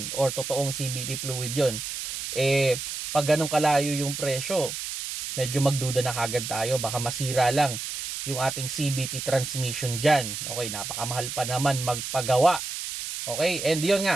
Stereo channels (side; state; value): right; noise; hiss, 6 dB below the sound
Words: or totoong CVT fluid yon. Pag ganun kalayo yung presyo, medyo magduda na kagad tayo. Baka masira lang yung ating CVT transmission dyan. Okay, napakamahal pa naman magpagawa. Okay, and yun